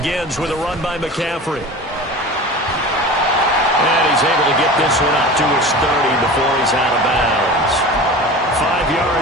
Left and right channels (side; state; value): both; normal; correlation 0.34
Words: with a run by McCaffrey. And he's able to get this one up to his 30 before he's out of bounds. 5